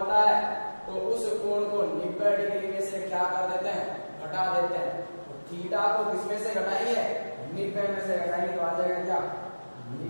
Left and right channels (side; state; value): both; inverted; correlation -1.00